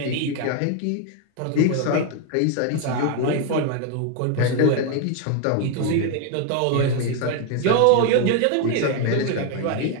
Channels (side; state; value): both; different; correlation 0.01